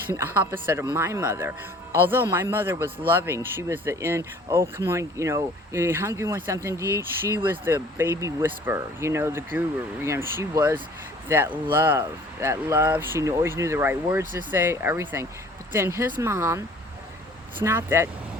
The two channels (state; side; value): normal; both; correlation 0.51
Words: opposite of my mother. Although my mother was loving, she was oh, come on, you hungry, want something to eat? She was the baby whisperer, the guru. She was that love. She always knew the right words to say, everything. But then his mom, it's not that